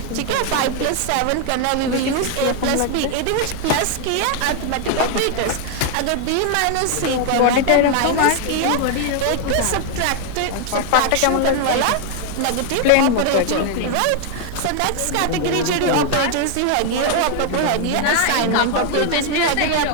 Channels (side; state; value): both; different; correlation 0.00